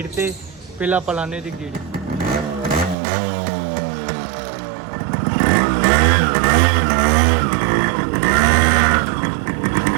ते, पहलां आपां लाने दी गेड़ी।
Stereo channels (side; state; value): left; drops out; at 3.0 s